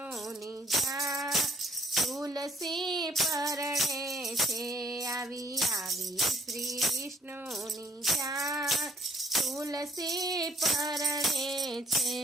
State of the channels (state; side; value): normal; both; correlation 0.62